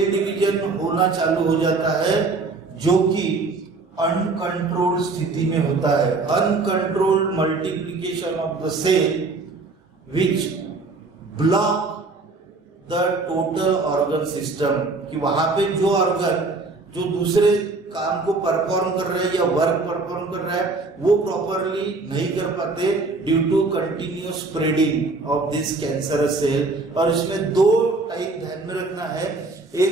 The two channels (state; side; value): quieter; left; 3.7 dB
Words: डिवीजन होना चालू हो जाता है, जो कि अनकंट्रोल्ड स्थिति में होता है. Uncontrolled multiplication of the cell which block the total organ system, कि वहां पे जो ऑर्गन जो दूसरे काम को परफॉर्म कर रहे हैं या वर्क परफॉर्म कर रहा है वो प्रॉपरली नहीं कर पाते due to continuous spreading of this cancerous cell. और इसमें दो टाइप ध्यान में रखना है.